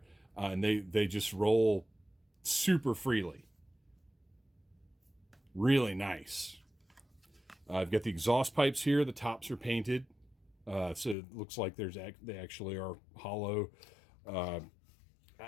And they just roll super freely. Really nice. I've got the exhaust pipes here. The tops are painted. So it looks like they actually are hollow.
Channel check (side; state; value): right; drops out; at 11.2 s